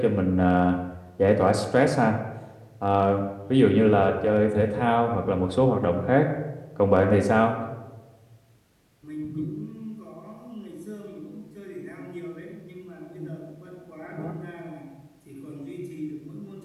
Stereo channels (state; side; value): identical; both; correlation 1.00